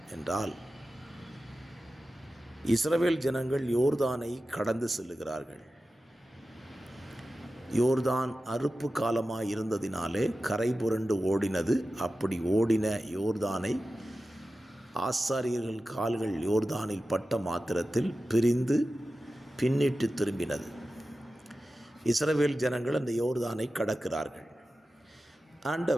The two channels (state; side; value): normal; both; correlation 0.94